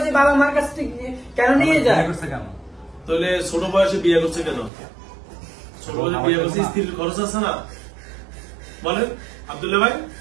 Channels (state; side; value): drops out; left; at 4.7 s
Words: বাবা মার কাছ থেকে কেন নিয়ে যায়? করছে কেন? তাহলে ছোট বয়সে বিয়ে করছে কেন? ছোট বয়সে বিয়ে করছে, স্ত্রীর খরচ আছে না? বলেন আব্দুল্লাহ ভাই,